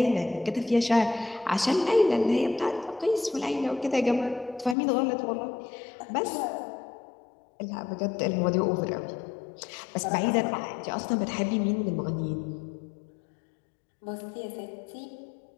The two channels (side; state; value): right; drops out; at 4.8 s